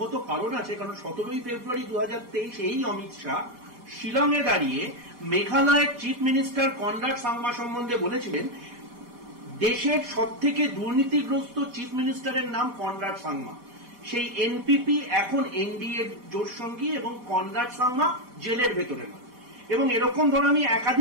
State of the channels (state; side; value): late; left; 4.1 ms